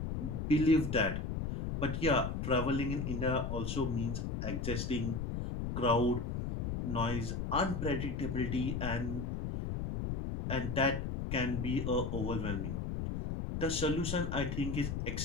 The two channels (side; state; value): left; noise; rumble, 3 dB below the sound